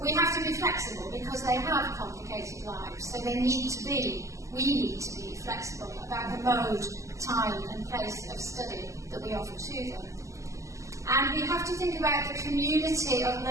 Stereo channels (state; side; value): late; left; 0.15 ms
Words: We have to be flexible because they have complicated lives, so they need to be we need to be flexible about the mode, time and place of study that we offer to them. And we have to think about the community of